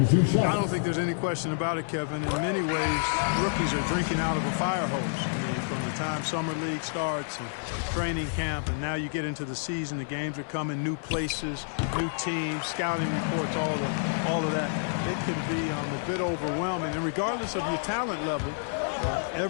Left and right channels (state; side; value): silent; right; digital silence